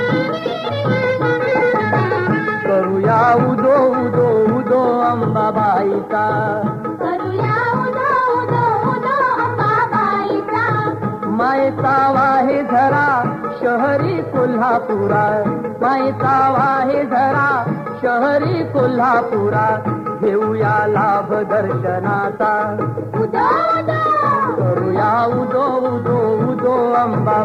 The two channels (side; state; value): both; identical; correlation 1.00